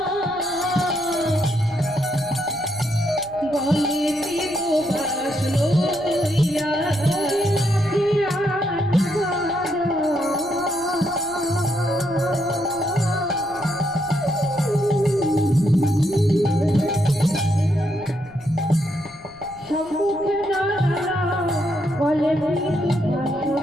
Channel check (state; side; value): noise; left; rumble, 24 dB below the sound